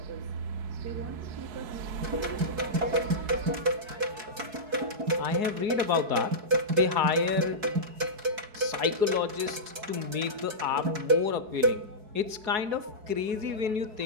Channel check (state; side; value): late; left; 4.7 ms